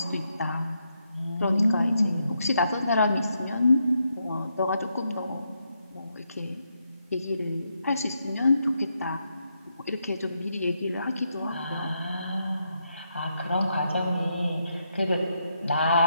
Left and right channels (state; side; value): inverted; both; correlation -0.81